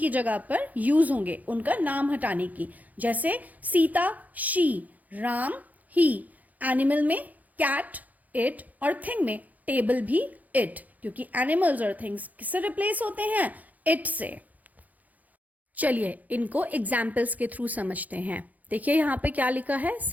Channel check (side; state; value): left; late; 0.079 ms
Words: जगह पर use होंगे उनका नाम हटाने की. जैसे Sita she, Ram he. Animal में कैट इट और थिंग में टेबल भी इट, क्योंकि एनिमल्स और थिंग्स किससे रिप्लेस होते हैं? इट से. चलिए इनको एग्जाम्पल्स के थ्रू समझते हैं. देखिए यहाँ पे क्या लिखा है,